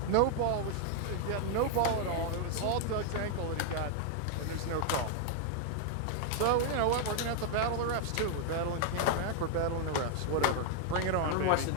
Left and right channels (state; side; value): different; both; correlation 0.00